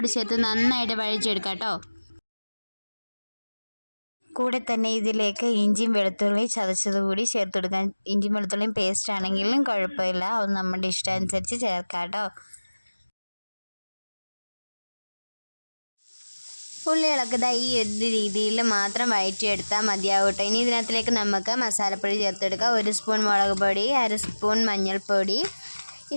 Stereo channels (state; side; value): inverted; both; correlation -1.00